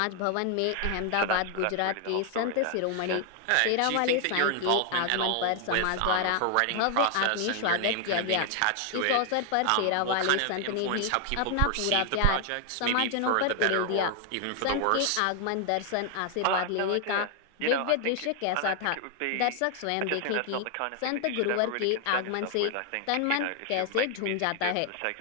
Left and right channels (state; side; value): different; both; correlation 0.00